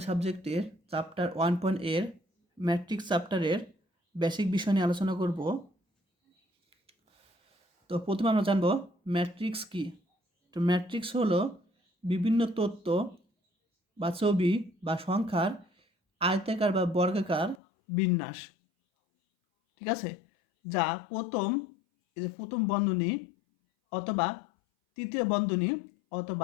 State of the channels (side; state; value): right; drops out; at 17.6 s